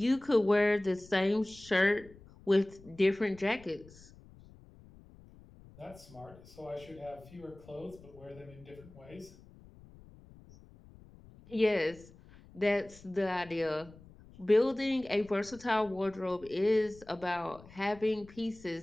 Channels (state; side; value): noise; left; rumble, 22 dB below the sound